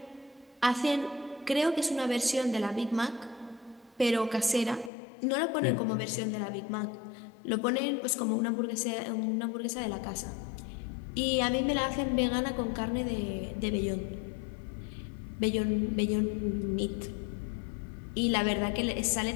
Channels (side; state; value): right; drops out; at 4.9 s